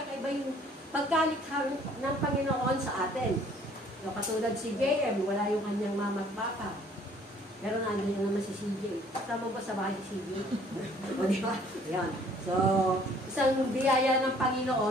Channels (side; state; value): both; normal; correlation 0.58